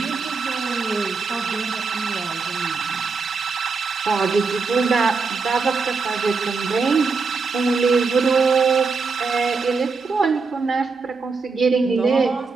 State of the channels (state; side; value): quieter; left; 4.6 dB